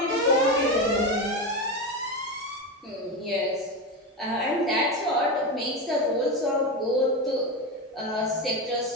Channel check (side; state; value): both; normal; correlation 0.18